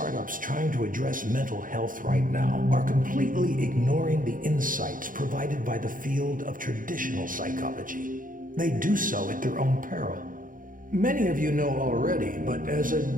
trying to address mental health right now are completely ignoring the insights provided by the field of traditional psychology. They do so at their own peril. Many of you know already, but as a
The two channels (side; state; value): left; late; 0.40 ms